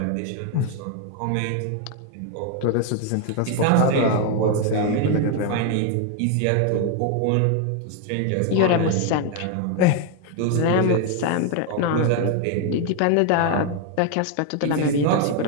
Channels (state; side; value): different; both; correlation 0.01